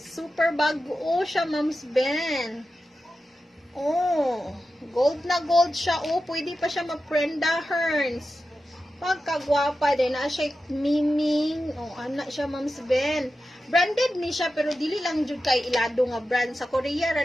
Super bago siya, Mams Ben. Oh. Gold na gold siya. Oh, pwede pa siya mag-Prenda Hearns. Pagkagwapa din. Na siya miming. Oh, anak siya, Mams Ben. Branded ni siya, pero dili lang jud kay ilado nga brand. Sa Korea,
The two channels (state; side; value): normal; both; correlation 0.92